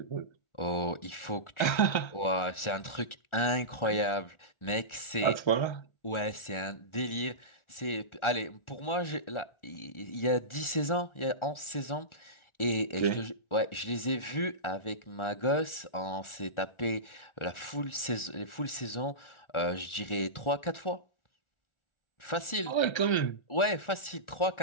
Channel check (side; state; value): right; late; 1.4 ms